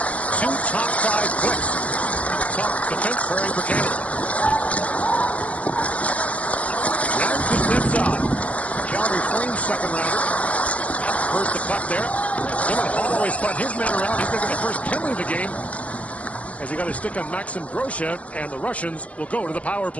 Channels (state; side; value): late; right; 0.065 ms